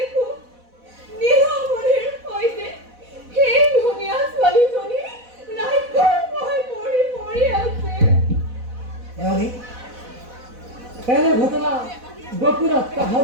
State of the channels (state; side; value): late; left; 4.0 ms